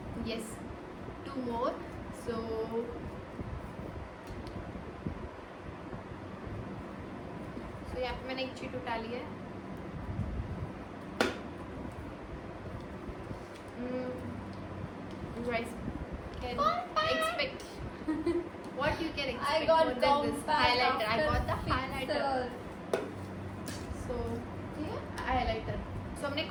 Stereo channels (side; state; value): both; identical; correlation 1.00